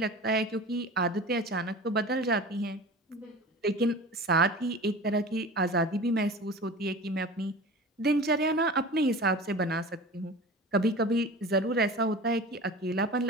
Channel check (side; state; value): both; normal; correlation 0.36